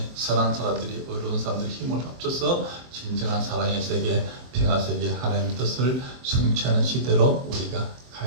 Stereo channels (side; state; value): left; late; 23 ms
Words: 선한 사람들이, 의로운 사람들이 힘을 합쳐서 진정한 사랑의 세계, 평화 세계, 하나님의 뜻을 성취하는 시대로 우리가